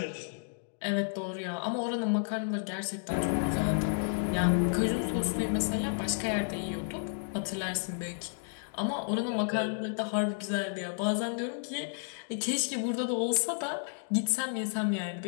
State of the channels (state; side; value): silent; right; digital silence